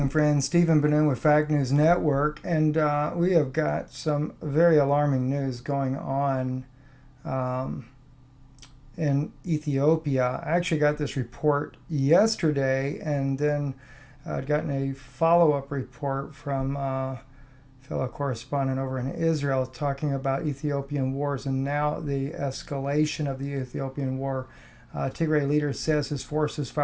friends. Stephen Ben-Nun with Fact News Network, and we have got some very alarming news going on in Ethiopia. I actually got this report yesterday, and then I'd gotten a follow-up report from a fellow correspondent over in Israel talking about Ethiopian wars and now the escalation of the Ethiopian war. Tigray leader says his forces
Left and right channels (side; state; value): both; identical; correlation 1.00